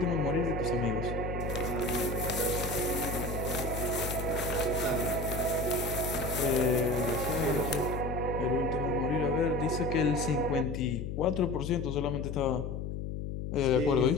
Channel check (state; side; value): noise; left; hum, 4 dB below the sound